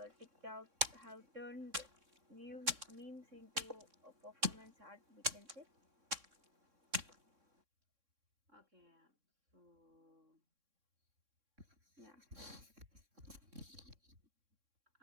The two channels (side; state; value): left; late; 3.6 ms